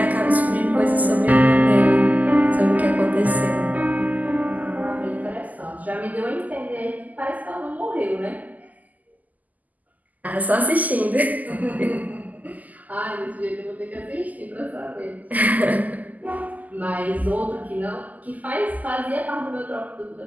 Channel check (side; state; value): left; late; 0.079 ms